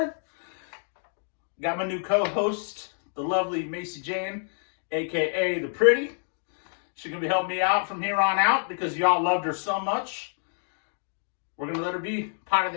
Got my new co-host, the lovely Macy Jane, a.k.a. The Pretty. She's going to be helping me out from here on out because y'all loved her so much. We're going to let her be part of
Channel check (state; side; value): silent; right; 60 dB below the other